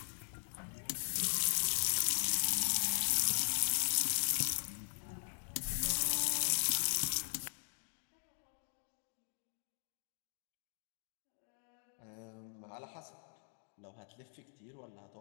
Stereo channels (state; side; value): silent; right; digital silence